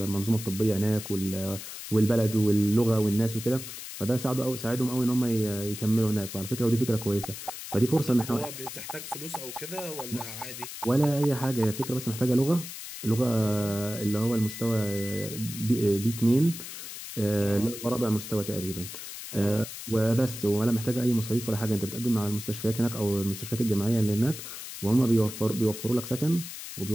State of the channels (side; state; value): left; noise; hiss, 10 dB below the sound